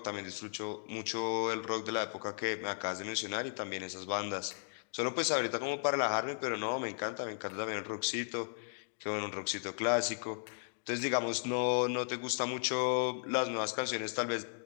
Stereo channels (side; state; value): right; silent; digital silence